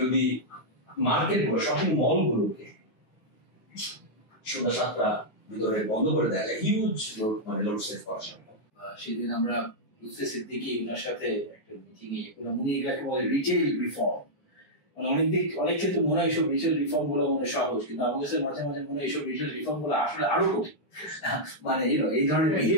মার্কেটগুলো, শপিং মলগুলোকে সন্ধ্যা 7টা ভিতরে বন্ধ করে দেওয়া যায়, হিউজ লোড, মানে লোড সেভ করা সম্ভব। সেদিন আমরা লুৎফে সিদ্দিকী ওনার সাথে একটা মিটিং এ উনি এগুলাকে বলে রিটেল রিফর্ম। অনেক ক্ষেত্রে মনে হয় এইসব রিটেল রিফর্ম গুলো মনে সহজ, কিন্তু আমাদের কাছে মাঝে মাঝে মনে হয় এইসব রিটেল রিফর্ম গুলো আসলে আরো কঠিন। মানে এই ধরনের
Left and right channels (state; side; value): late; right; 9.6 ms